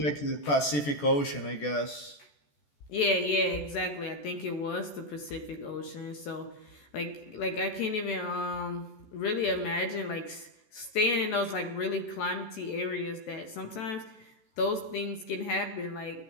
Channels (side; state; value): right; late; 14 ms